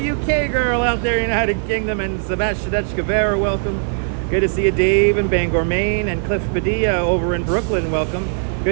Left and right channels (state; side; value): silent; left; digital silence